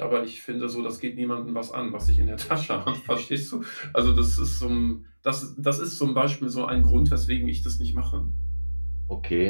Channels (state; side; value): inverted; both; correlation -1.00